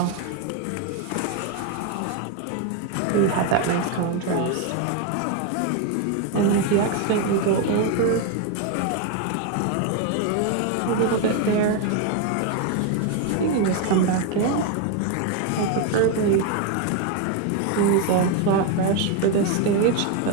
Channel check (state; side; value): different; both; correlation 0.01